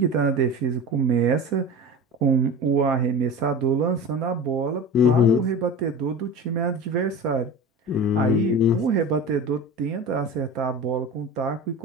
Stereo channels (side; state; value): both; normal; correlation 0.32